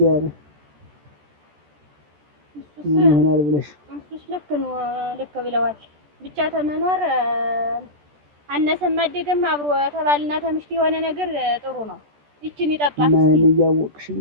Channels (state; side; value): late; left; 14 ms